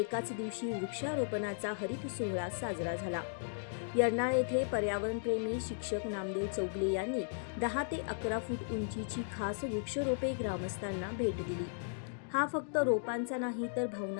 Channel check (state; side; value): silent; right; digital silence